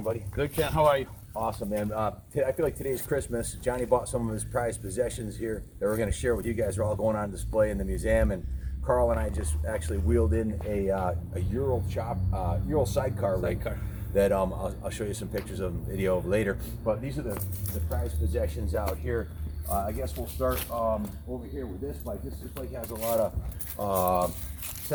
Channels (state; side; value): identical; both; correlation 1.00